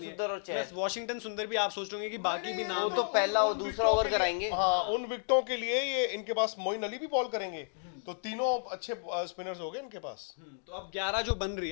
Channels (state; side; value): silent; right; digital silence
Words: है। सुंदर और चहल। Plus वॉशिंगटन सुंदर भी आप सोच रहे कि बाकी भी नाम वो तो पहला और दूसरा ओवर कराएंगे। हाँ, उन विकेटों के लिए ये इनके पास मोइन अली भी बॉल करेंगे, तो तीनों अच्छे स्पिनर्स हो गए इनके पास। तो अब 11 जो बन रही